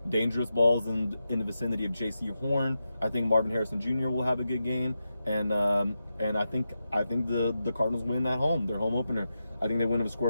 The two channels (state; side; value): inverted; both; correlation -0.89